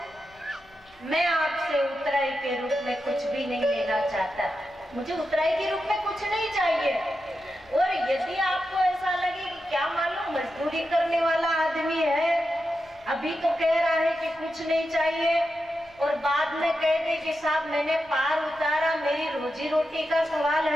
मैं आपसे उतराई के रूप में कुछ भी नहीं लेना चाहता, मुझे उतराई के रूप में कुछ नहीं चाहिए। और यदि आपको ऐसा लगे कि क्या मालूम मजदूरी करने वाला आदमी है, अभी तो कह रहा है कि कुछ नहीं चाहिए और बाद में कह दे कि साहब मैंने पार उतारा, मेरी रोजी रोटी का सवाल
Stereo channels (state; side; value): noise; left; rumble, 29 dB below the sound